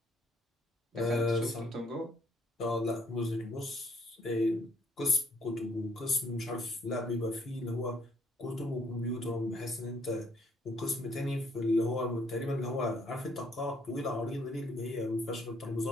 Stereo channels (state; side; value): normal; both; correlation 0.66